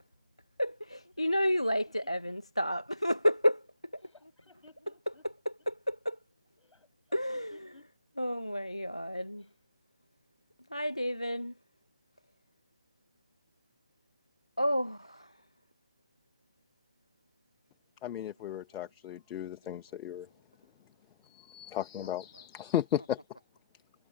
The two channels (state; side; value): inverted; both; correlation -0.77